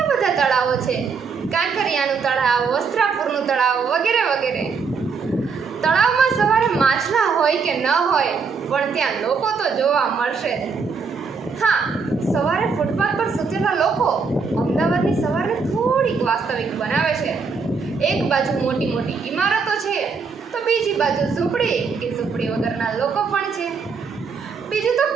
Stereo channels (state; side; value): quieter; left; 5.2 dB